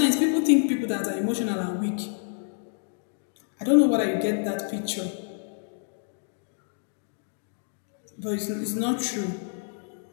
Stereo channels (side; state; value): right; silent; digital silence